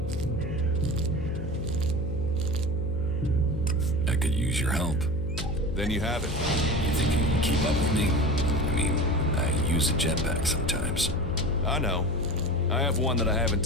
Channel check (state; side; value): noise; left; hum, 8 dB below the sound